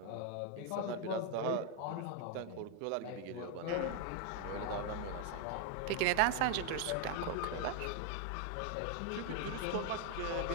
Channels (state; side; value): different; both; correlation 0.01